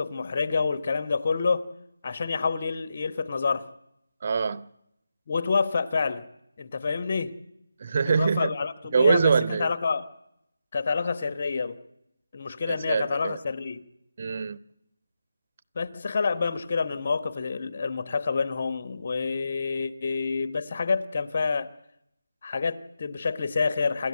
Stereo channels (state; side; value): inverted; both; correlation -0.86